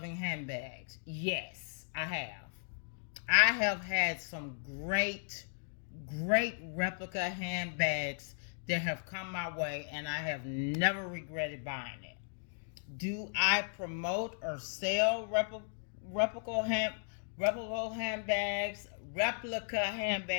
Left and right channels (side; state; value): right; silent; digital silence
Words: handbags. Yes, I have. I have had some great replica handbags that have come my way, and I have never regretted buying it. Do I promote or sell replica hand replica handbags, replica